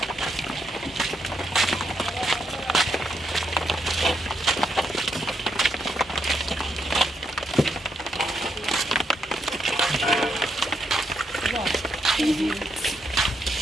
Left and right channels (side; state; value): both; normal; correlation 0.79